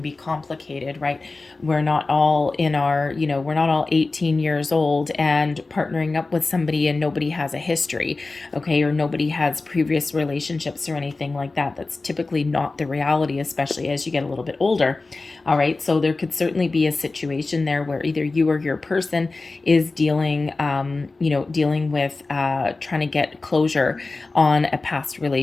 be complicated, right? We're not all in our, you know, we're not all 18 years old and partnering up with somebody and nobody has a history, okay, or nobody has previous relationships or anything like that. That's typically not the reality, especially as you get a little bit older. All right, so there could certainly be a situation there where either you or your person is dealing, dealing with trying to get closure on a past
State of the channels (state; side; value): quieter; right; 3.5 dB